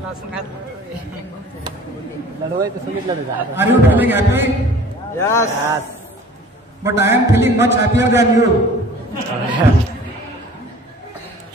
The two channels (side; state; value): both; normal; correlation 0.47